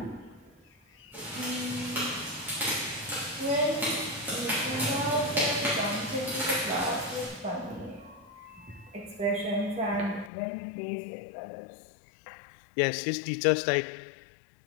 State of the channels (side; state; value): right; drops out; at 10.3 s